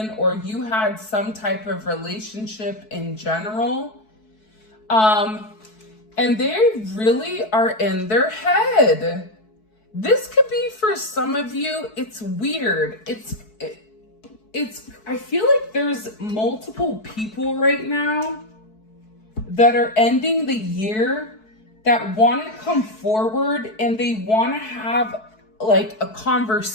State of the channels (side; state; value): right; late; 4.6 ms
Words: or you had some type of relationship in general. And they really are in their head. This could be for some of you, it's weird. I feel like there's multiple people right now that are ending the year that want to come forward and they want to have like a